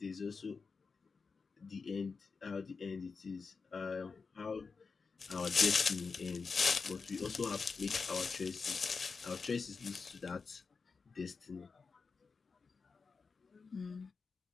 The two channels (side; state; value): right; quieter; 4.8 dB